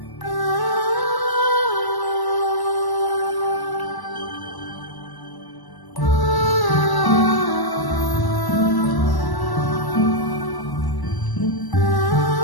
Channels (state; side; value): late; right; 1.1 ms